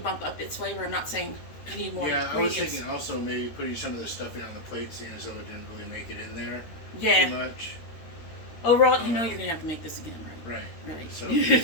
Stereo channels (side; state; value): right; late; 13 ms